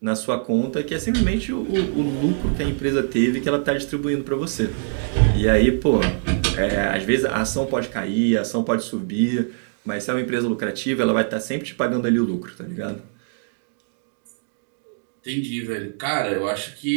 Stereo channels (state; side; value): silent; left; digital silence